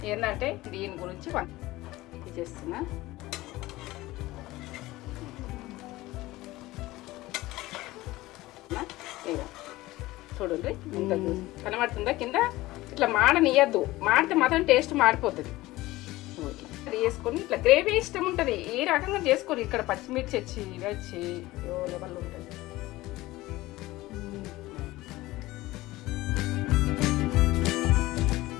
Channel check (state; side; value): quieter; right; 18.3 dB